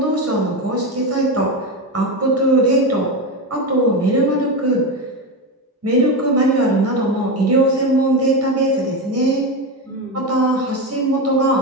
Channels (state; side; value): normal; both; correlation 0.15